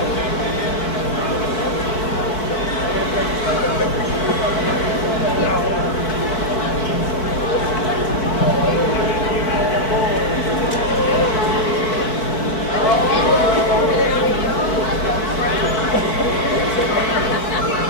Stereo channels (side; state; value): right; late; 4.6 ms